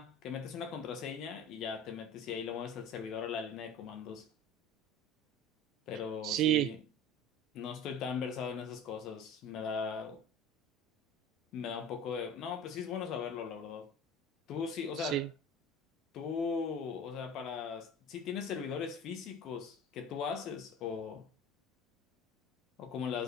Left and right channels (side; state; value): both; normal; correlation 0.37